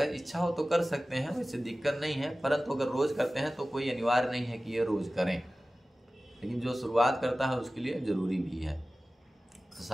इच्छा हो तो कर सकते हैं, वैसे दिक्कत नहीं है, परंतु अगर रोज करते हैं तो कोई अनिवार्य नहीं है कि ये रोज करें। लेकिन जो शुरुआत करता है उसके लिए जरूरी भी है। तो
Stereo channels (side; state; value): both; normal; correlation 0.96